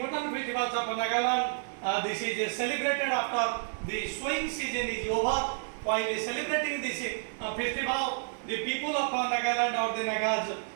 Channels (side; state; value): left; silent; digital silence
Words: festivals of Nagaland. This is celebrated after the sowing season is over. While celebrating this festival, the people of Nagaland or the Nagas